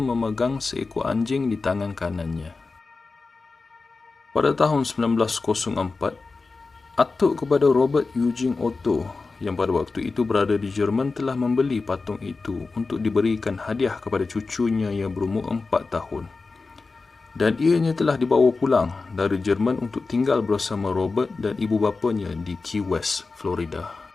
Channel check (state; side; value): quieter; right; 4.0 dB